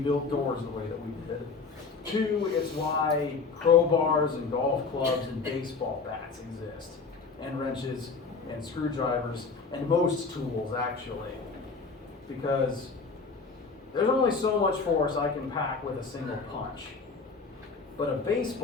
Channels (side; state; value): right; quieter; 4.6 dB